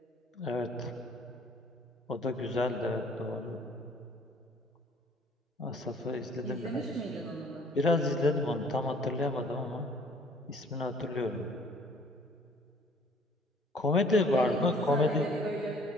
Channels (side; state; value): both; normal; correlation 0.56